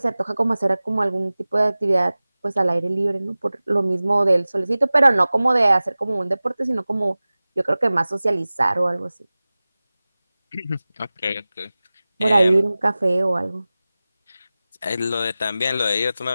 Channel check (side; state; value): both; inverted; correlation -0.98